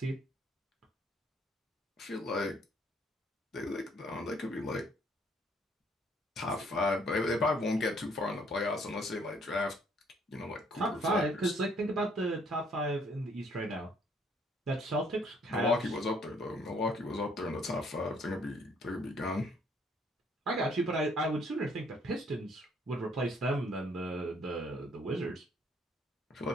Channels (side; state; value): both; normal; correlation 0.64